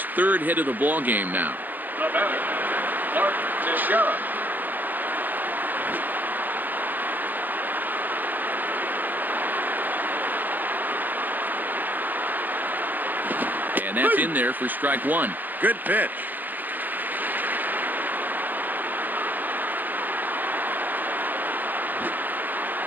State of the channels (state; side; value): late; left; 0.085 ms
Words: 3rd hit of the ball game now. The batter, Mark Teixeira. And that's in there for strike one. Good pitch.